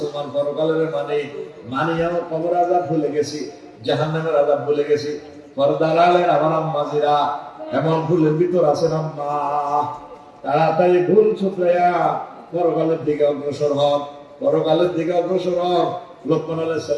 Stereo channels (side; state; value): both; identical; correlation 1.00